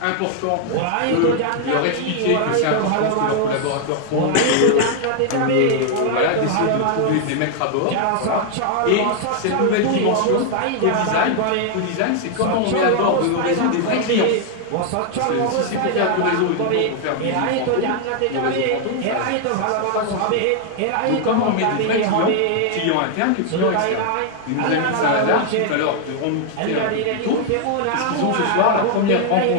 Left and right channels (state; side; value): different; both; correlation 0.00